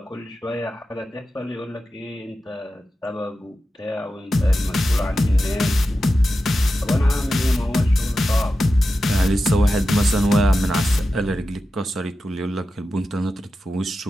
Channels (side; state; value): both; normal; correlation 0.92